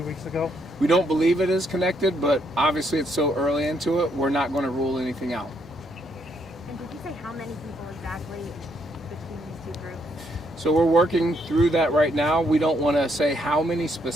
2 weeks ago? We don't believe it is connected, but obviously it's so early into it, we're not going to rule anything out. And did you say how many people exactly between these two groups? So we're working through that right now. We don't want to say how many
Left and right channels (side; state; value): both; normal; correlation 0.73